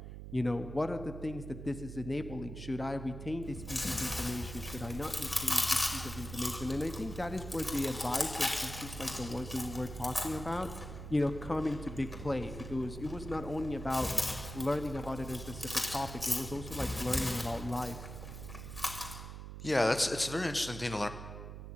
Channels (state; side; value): noise; right; hum, 9 dB below the sound